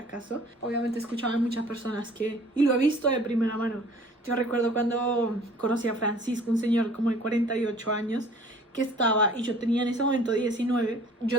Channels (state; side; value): normal; both; correlation 0.51